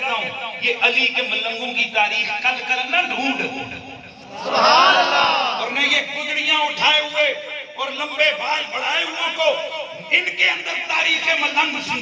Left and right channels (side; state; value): both; identical; correlation 1.00